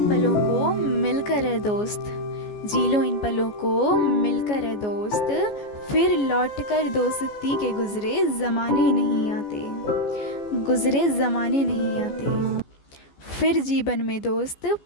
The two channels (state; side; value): late; right; 14 ms